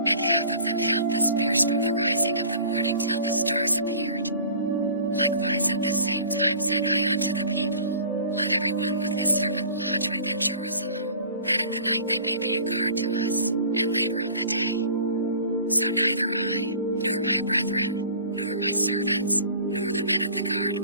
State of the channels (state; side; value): inverted; both; correlation -0.45